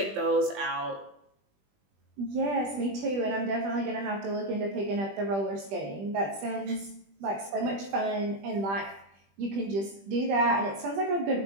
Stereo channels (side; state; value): left; late; 20 ms